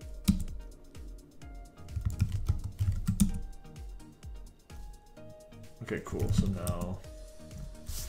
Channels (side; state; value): both; identical; correlation 1.00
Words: Okay, cool. So now